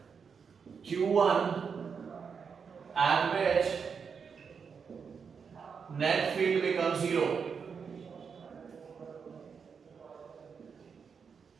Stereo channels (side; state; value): left; quieter; 6.1 dB